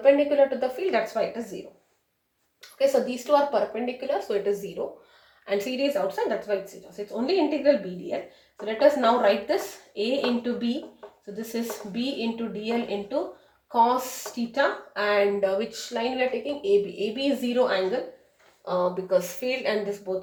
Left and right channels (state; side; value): identical; both; correlation 1.00